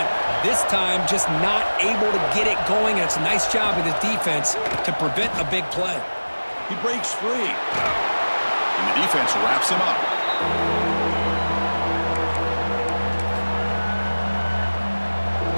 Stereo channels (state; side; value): inverted; both; correlation -1.00